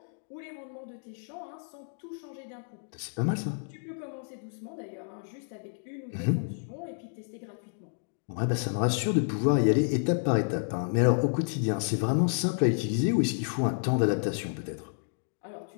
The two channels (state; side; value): silent; right; digital silence